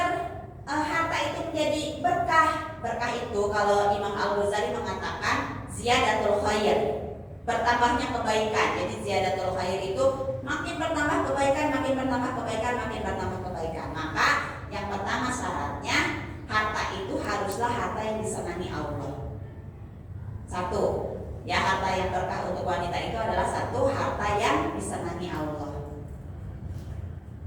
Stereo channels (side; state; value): both; identical; correlation 1.00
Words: harta itu menjadi berkah? Berkah itu kalau Imam Al-Ghazali mengatakan ziyadatul khair, bertambahnya kebaikan. Jadi ziyadatul khair itu makin bertambah kebaikan, makin bertambah kebaikan, makin bertambah kebaikan. Maka yang pertama syaratnya harta itu haruslah harta yang disenangi Allah. Satu, ya harta yang berkah untuk wanita itu adalah satu harta yang disenangi Allah.